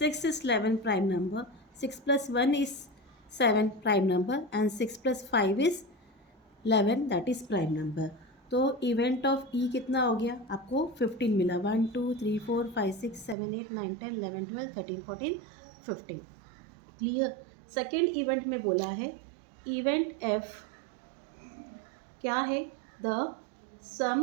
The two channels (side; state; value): left; drops out; at 13.4 s